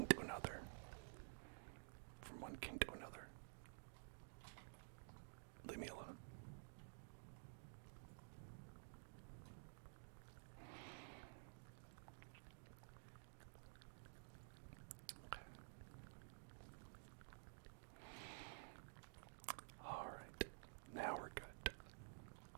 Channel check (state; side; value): silent; left; digital silence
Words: to another. Leave me alone. Okay. Alright. Now we're good.